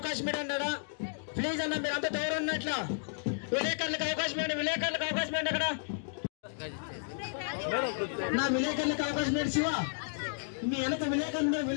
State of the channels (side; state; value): right; silent; digital silence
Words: ఏంటన్నాడా? ప్లీజ్ అన్న, మీరు అంతా దూరం ఉన్నట్ల విలేకరులకు అవకాశం ఏంటి, విలేకరులకు అవకాశం ఏంటి అక్కడ నా విలేకరులకు అవకాశం ఏంటి? శివ, మీ వెనక విలేకరులు